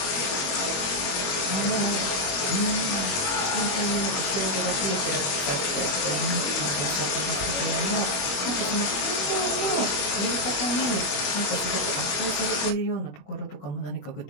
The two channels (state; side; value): late; right; 21 ms